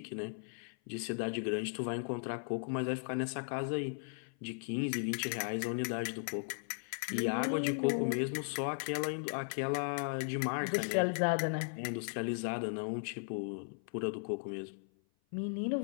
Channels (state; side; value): silent; right; 53 dB below the other